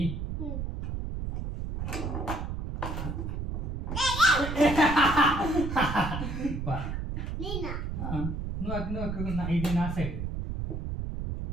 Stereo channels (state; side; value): noise; right; rumble, 4 dB below the sound